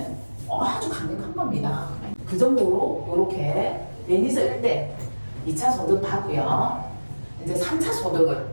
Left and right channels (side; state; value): both; inverted; correlation -1.00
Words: 아주 강력한 겁니다. 그 정도로 이렇게 매니저 1대 2차 소득 받고요. 이제 3차 소득을